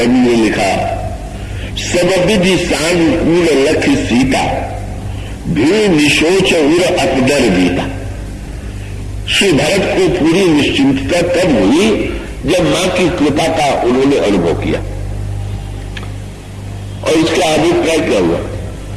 ने लिखा, सब विधि सानुकूल लख सीता, भी निशोच उर अपदर गीता। श्री भरत को पूरी निश्चिंतता तब हुई जब मां की कृपा का उन्होंने अनुभव किया। और इसका अभिप्राय क्या हुआ?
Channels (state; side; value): identical; both; correlation 1.00